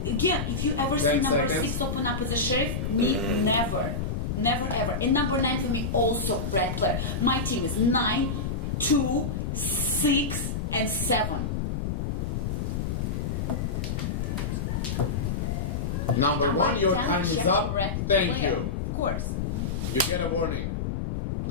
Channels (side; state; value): left; noise; rumble, 2 dB below the sound